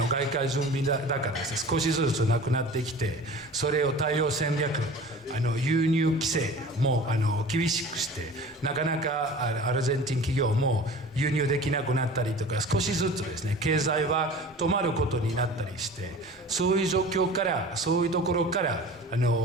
外貨準備高ですね、少しずつなくなってきて、それを対応戦略、輸入規制も厳しくして、なかなかアルゼンチン企業も輸入できなくなったりとか、少しずつですね、経済は止まることになったりして、そういう状況から、そういうところから、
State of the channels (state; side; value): normal; both; correlation 0.40